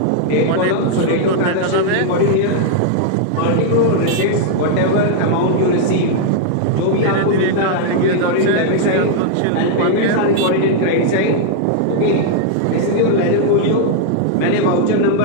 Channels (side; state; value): both; different; correlation 0.00